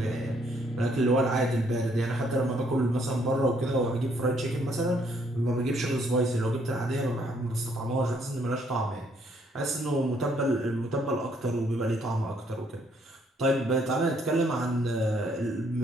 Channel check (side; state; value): both; normal; correlation 0.68